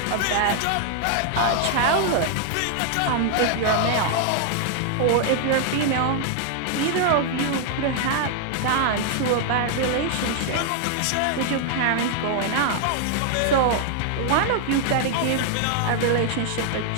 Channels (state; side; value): different; both; correlation -0.01